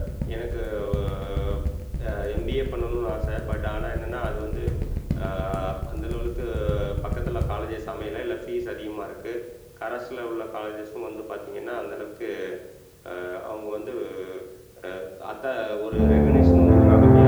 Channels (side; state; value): both; identical; correlation 1.00